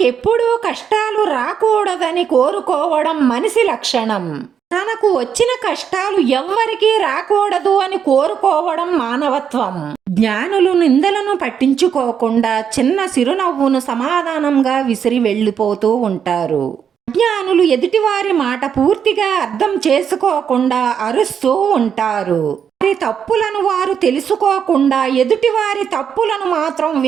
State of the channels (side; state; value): left; quieter; 7.7 dB